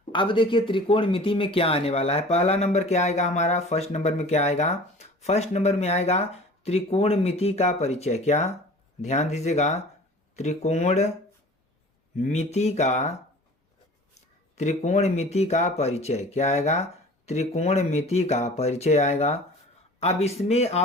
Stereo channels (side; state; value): both; normal; correlation 0.44